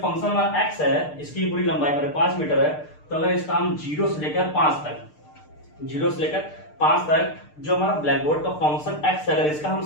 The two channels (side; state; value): right; late; 6.6 ms